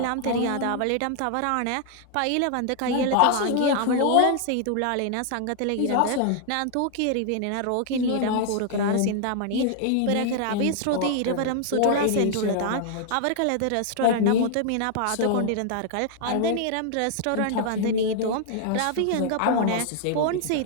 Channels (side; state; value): both; different; correlation 0.00